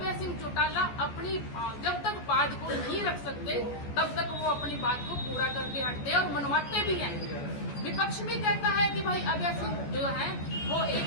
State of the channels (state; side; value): late; right; 14 ms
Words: सिंह चौटाला अपनी जब तक बात को नहीं रख सकते तब तक वो अपनी बात को पूरा करके हटते और मनवाते भी हैं। विपक्ष भी कहता है कि भाई अभय सिंह जो है वो